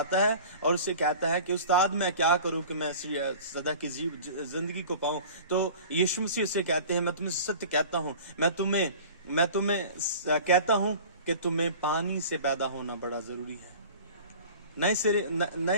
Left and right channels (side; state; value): both; inverted; correlation -0.41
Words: है और उससे कहता है कि उस्ताद मैं क्या करूं कि मैं सदा की जिंदगी को पाऊं। तो यीशु मसीह उससे कहते हैं, मैं तुम्हें सत्य कहता हूं, मैं तुम्हें कहता हूं कि तुम्हें पानी से पैदा होना बड़ा जरूरी है,